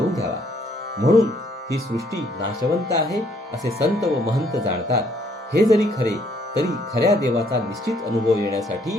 घ्यावा. म्हणून ही सृष्टी नाशवंत आहे असे संत व महंत जाणतात. हे जरी खरे तरी खऱ्या देवाचा निश्चित अनुभव येण्यासाठी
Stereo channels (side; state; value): both; normal; correlation 0.66